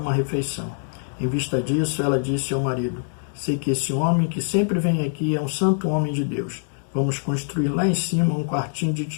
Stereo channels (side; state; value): right; silent; digital silence